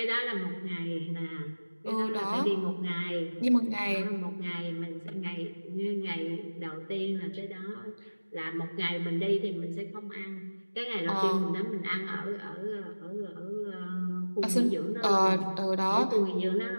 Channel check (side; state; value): both; inverted; correlation -1.00